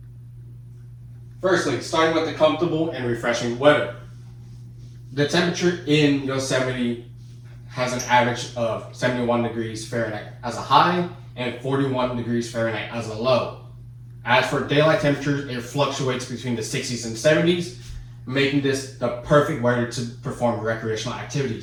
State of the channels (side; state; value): both; identical; correlation 1.00